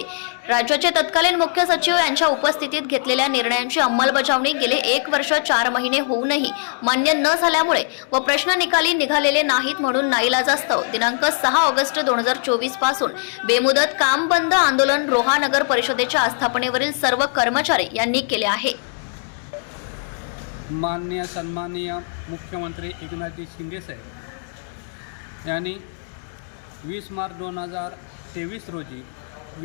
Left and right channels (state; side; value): silent; right; digital silence